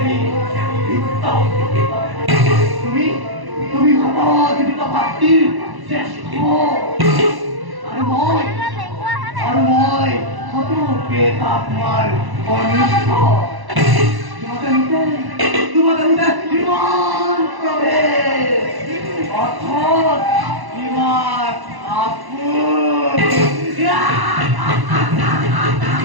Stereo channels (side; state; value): left; late; 1.0 ms